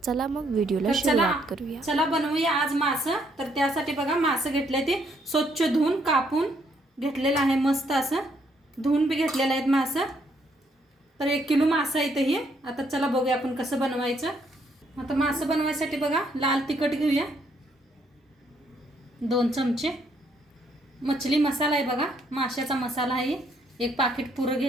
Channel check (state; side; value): normal; both; correlation 0.71